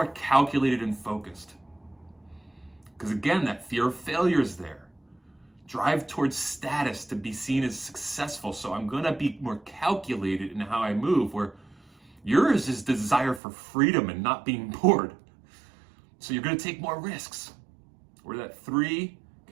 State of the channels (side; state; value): left; drops out; at 13.4 s